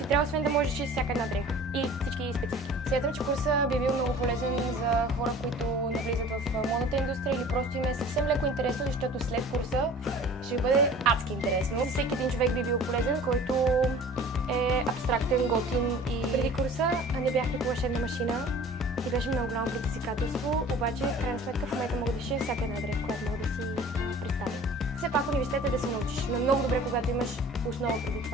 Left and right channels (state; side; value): normal; both; correlation 0.45